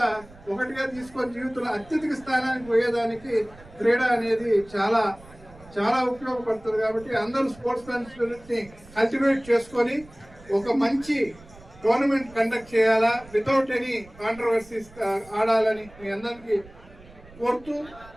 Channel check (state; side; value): noise; right; rumble, 22 dB below the sound